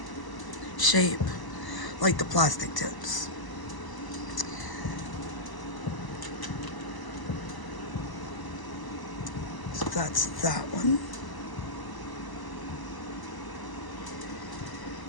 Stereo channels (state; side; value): late; right; 1.0 ms